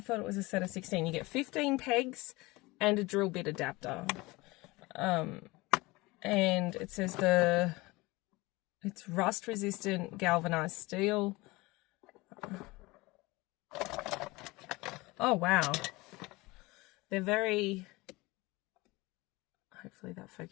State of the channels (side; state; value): right; quieter; 22.3 dB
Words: it was a set of 16. You get 15 pegs and a drill bit adapter. And it says it's rust resistant galvanized steel. Oh, wow. They're very, hopefully that